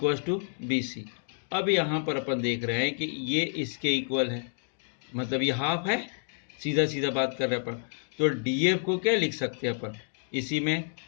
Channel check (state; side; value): silent; right; digital silence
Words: to BC। अब यहाँ पर अपन देख रहे हैं कि ये इसके इक्वल है, मतलब ये हाफ है, सीधा सीधा बात कर रहे हैं अपन। तो DF को क्या लिख सकते हैं अपन, इसी में